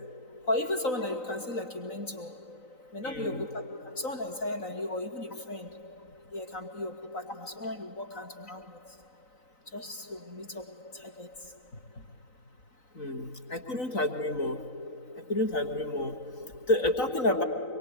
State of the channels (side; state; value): right; late; 3.9 ms